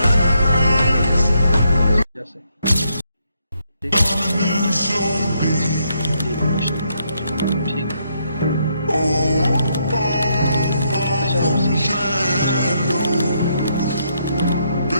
जैसे ठीक है,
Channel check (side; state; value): both; inverted; correlation -0.76